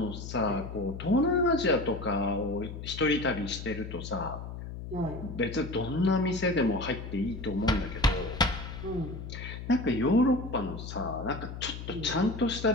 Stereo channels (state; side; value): noise; left; hum, 9 dB below the sound